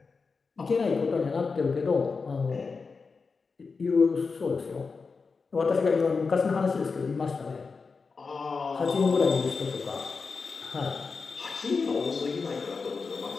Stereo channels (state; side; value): quieter; right; 4.7 dB